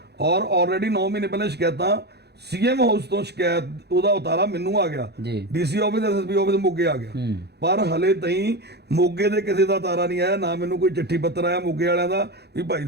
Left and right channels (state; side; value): late; left; 0.48 ms